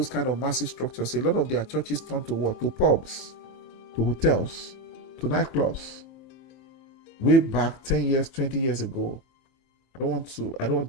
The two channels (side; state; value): right; late; 24 ms